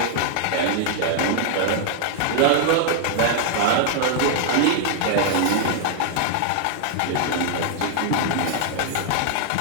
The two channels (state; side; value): different; both; correlation -0.01